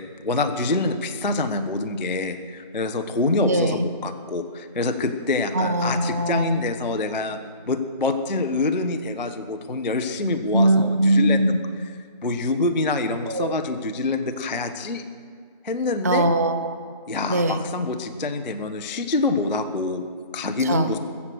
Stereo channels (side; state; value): both; inverted; correlation -0.42